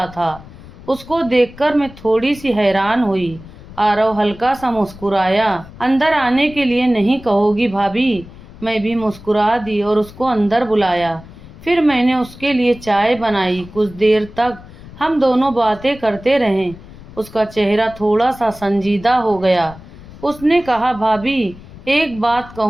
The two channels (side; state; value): left; noise; rumble, 18 dB below the sound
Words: था। उसको देखकर मैं थोड़ी सी हैरान हुई। आरव हल्का सा मुस्कुराया। अंदर आने के लिए नहीं कहोगी भाभी? मैं भी मुस्कुरा दी और उसको अंदर बुलाया। फिर मैंने उसके लिए चाय बनाई। कुछ देर तक हम दोनों बातें करते रहे। उसका चेहरा थोड़ा सा संजीदा हो गया। उसने कहा भाभी, एक बात